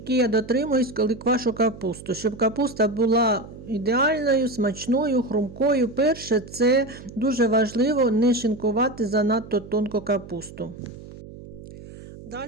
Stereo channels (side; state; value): right; noise; hum, 16 dB below the sound